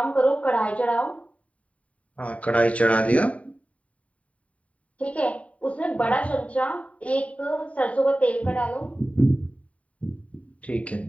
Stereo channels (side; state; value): right; late; 0.066 ms